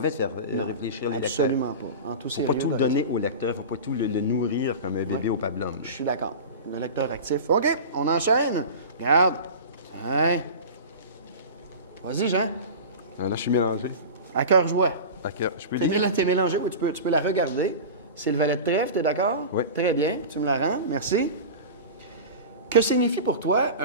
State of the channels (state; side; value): inverted; both; correlation -0.30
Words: de faire réfléchir les lecteurs. Absolument pas. En tout Il ne sérieux. faut pas tout donner au lecteur, il ne faut pas tout le nourrir comme un bébé au pablum. Je suis d'accord. Le lecteur actif. OK, on enchaîne. Regarde. Hein? Vas-y, Jean. Là, je suis mélangé. À cœur joie. D'accord. Je peux lire? T'es mélangé, oui, tu peux la regarder. C'est le valet de trèfle, t'es d'accord? Oui. Très bien, tu me la rends, merci. Que signifie pour toi